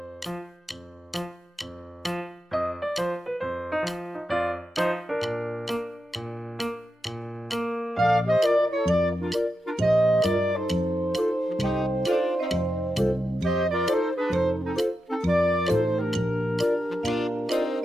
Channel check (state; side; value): normal; both; correlation 0.89